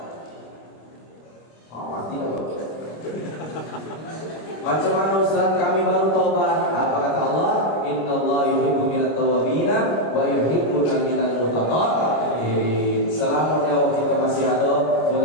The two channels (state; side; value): late; right; 25 ms